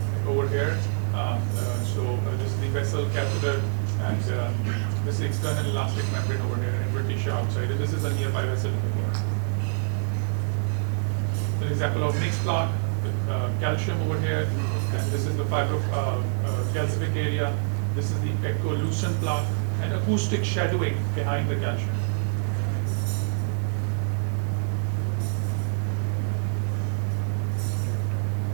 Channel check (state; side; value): silent; left; digital silence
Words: over here. This is the vessel catheter, and this is the external elastic membrane over here, invertitia outside. And this is a nearby vessel. An example of mixed plaque with calcium over here, and this is the calcific area. This is the echolucent plaque and acoustic shadowing behind the calcium.